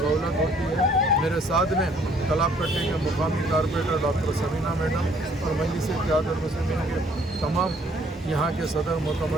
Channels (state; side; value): normal; both; correlation 0.62